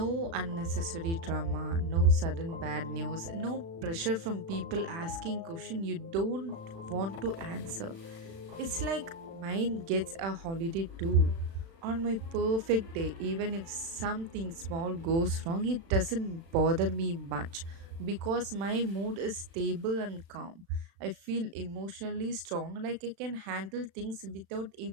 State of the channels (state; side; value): late; left; 36 ms